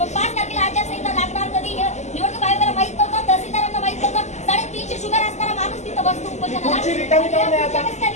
5 तारखेला आचारसंहिता लागणार कधी निवडणूक आयोगाला माहित नव्हतं, तहसीलदारांना माहित नव्हतं. 350 शुगर असणारा माणूस तिथं बसतो उपोषणाला.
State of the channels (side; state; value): right; late; 0.33 ms